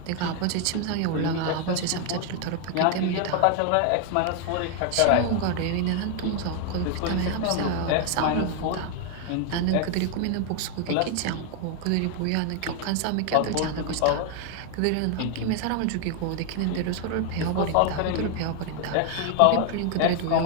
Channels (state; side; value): different; both; correlation 0.00